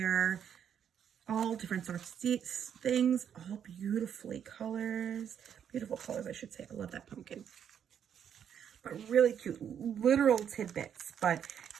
All different sorts of things, all beautiful colors, I should say. I love that pumpkin. But really cute, literal tidbits, but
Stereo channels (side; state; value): left; quieter; 8.6 dB